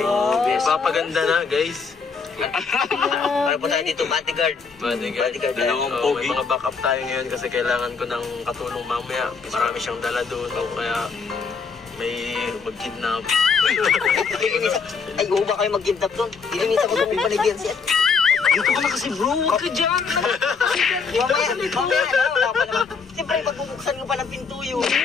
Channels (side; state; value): right; quieter; 5.3 dB